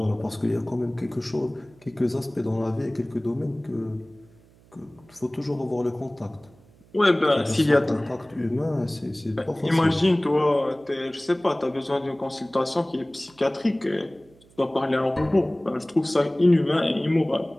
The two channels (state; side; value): noise; right; hum, 28 dB below the sound